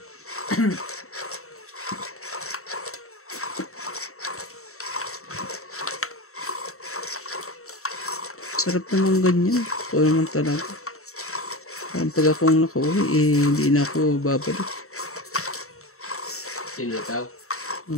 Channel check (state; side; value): late; right; 0.64 ms